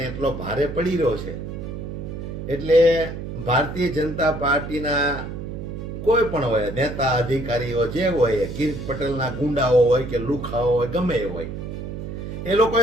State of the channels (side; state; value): right; noise; hum, 7 dB below the sound